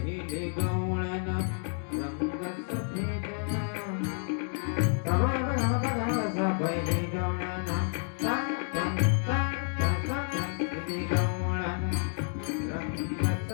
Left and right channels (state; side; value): silent; right; 58 dB below the other